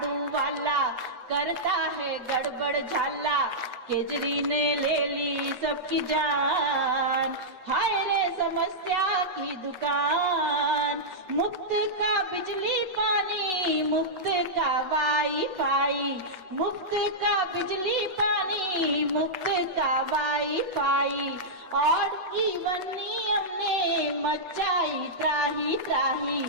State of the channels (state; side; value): late; left; 8.0 ms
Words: वाला करता है गड़बड़ झाला। केजरी ने ले ली सबकी जान, हाय रे समस्या की दुकान। मुफ्त का बिजली पानी, मुफ्त का वाईफाई, मुफ्त का बिजली पानी, मुफ्त का वाईफाई। और इवन नियम ने मचाई त्राही त्राही।